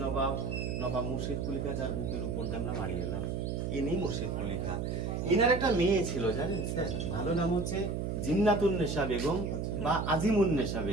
নবাব নবাব মুর্শিদ কুলি খাঁ, যার বুকের উপর দিয়ে আমরা মারিয়ে এলাম। ইনি মুর্শিদ কুলি খাঁ। ইনার একটা মেয়ে ছিল জানেন স্যার, ভালো নাম হচ্ছে জিন্নাতুন্নেসা বেগম বা আজিমুন্নেসা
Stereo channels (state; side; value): noise; right; hum, 2 dB below the sound